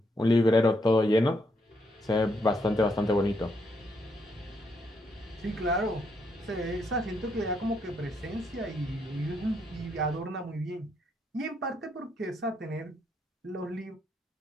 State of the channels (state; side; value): normal; both; correlation 0.76